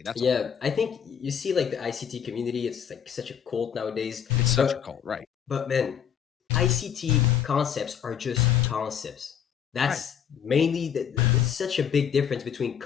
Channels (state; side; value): quieter; right; 8.5 dB